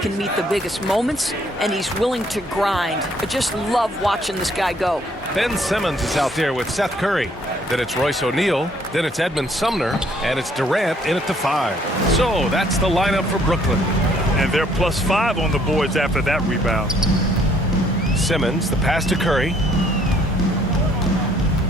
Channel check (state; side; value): normal; both; correlation 0.64